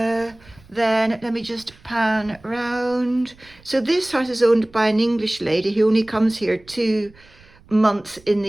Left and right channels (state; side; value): noise; right; rumble, 26 dB below the sound